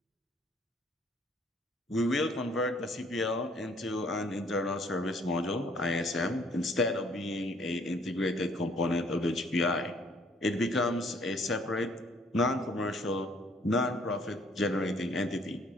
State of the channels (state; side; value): normal; both; correlation 0.62